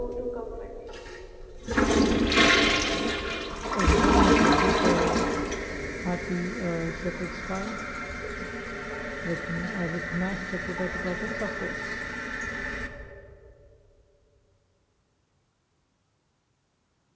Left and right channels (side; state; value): both; identical; correlation 1.00